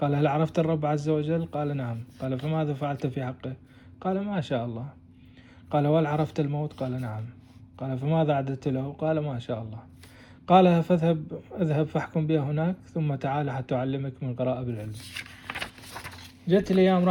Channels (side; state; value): both; identical; correlation 1.00